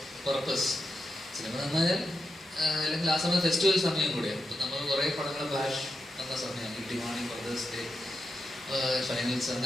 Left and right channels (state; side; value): normal; both; correlation 0.87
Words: പർപ്പസ്. സിനിമ നന്നായാൽ അല്ലെങ്കിൽ ആ സമയം ഫെസ്റ്റിവൽ സമയം കൂടെയാണ്. ഇപ്പം നമ്മൾ കുറേ പടങ്ങൾ ബാഷ് എന്ന സമയം, കിട്ടിവാണി, ബ്രദേഴ്സ് ഡേ, ഫൈനൽസ്,